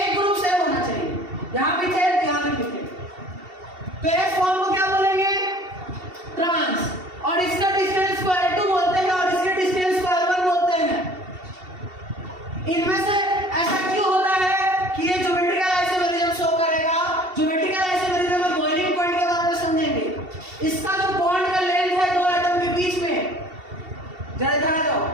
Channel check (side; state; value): left; late; 2.7 ms